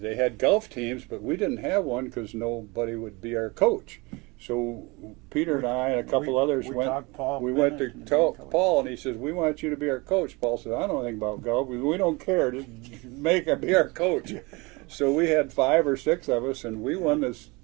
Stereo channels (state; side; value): quieter; left; 25.9 dB